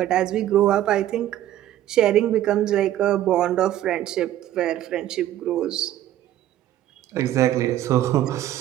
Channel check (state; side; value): quieter; left; 12.8 dB